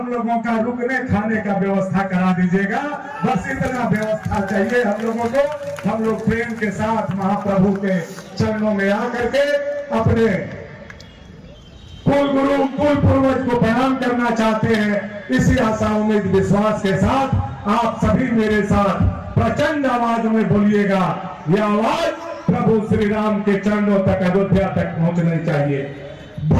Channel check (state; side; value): identical; both; correlation 1.00